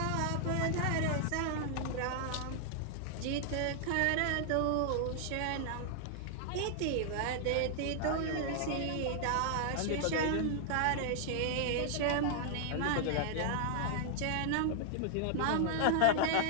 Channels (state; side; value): different; both; correlation -0.01